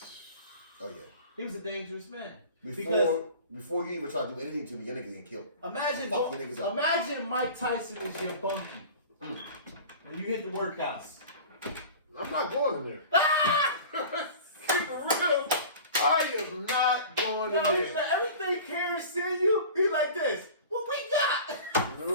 Oh yeah. He was a dangerous man. Before you even try to do anything to me, your niggas getting killed. Imagine, Fuck you niggas up. imagine Mike Tyson is your bunkie. When you hit the workhouse. I'm not going in there. Keep it real. I am not going in No, he's there. like, everything Karen send you, he's like this. What we got?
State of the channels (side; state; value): both; inverted; correlation -0.39